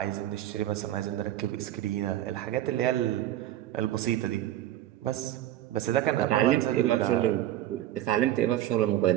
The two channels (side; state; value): left; quieter; 13.2 dB